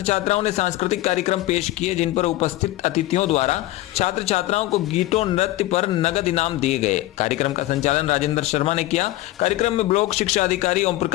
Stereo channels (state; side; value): quieter; right; 16.8 dB